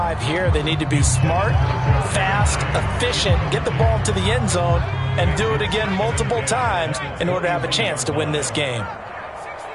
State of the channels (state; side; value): identical; both; correlation 1.00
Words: here. They need to be smart, fast, efficient, get the ball to the end zone, and do it again multiple times in order to have a chance to win this game.